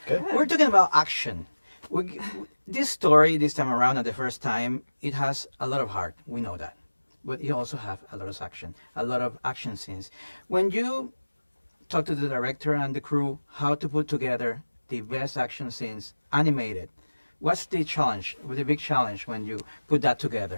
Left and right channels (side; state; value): both; inverted; correlation -1.00